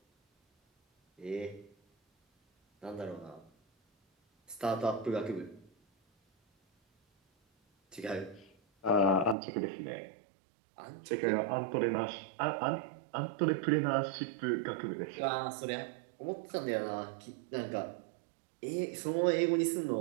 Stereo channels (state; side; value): drops out; left; at 9.3 s